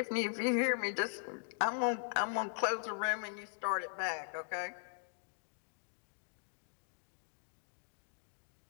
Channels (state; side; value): silent; right; digital silence